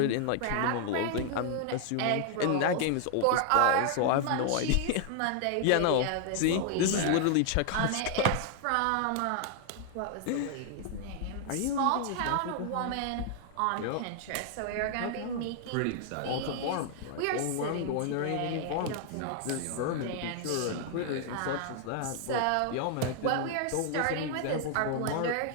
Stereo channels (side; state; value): both; different; correlation 0.00